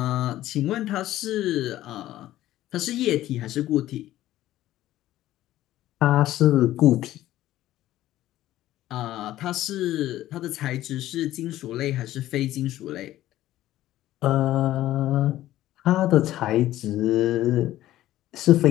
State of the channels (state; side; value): quieter; right; 14.3 dB